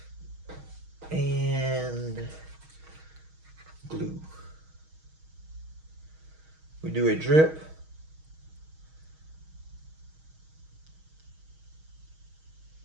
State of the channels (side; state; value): left; late; 6.3 ms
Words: And glue. We do a drip.